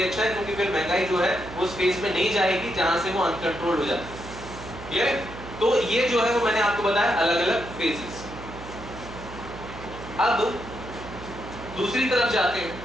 अच्छा है, क्योंकि फिर महंगाई जो है उस फेज में नहीं जाएगी जहां से वो अनकंट्रोल हो जाती है। क्लियर है? तो ये जो है वो मैंने आपको बताया अलग अलग फेजेस। अब दूसरी तरफ जाते हैं।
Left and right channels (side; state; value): right; noise; hum, 13 dB below the sound